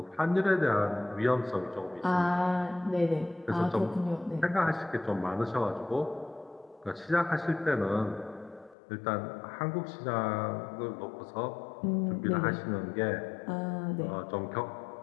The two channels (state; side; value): drops out; right; at 8.8 s